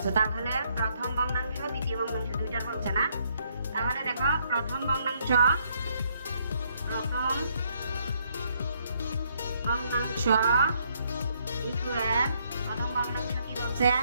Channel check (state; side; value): inverted; both; correlation -0.70